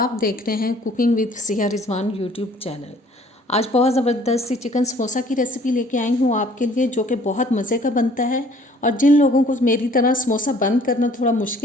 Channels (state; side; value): normal; both; correlation 0.56